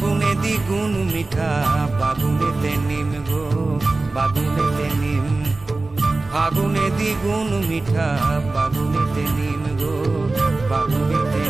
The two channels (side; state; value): left; quieter; 3.3 dB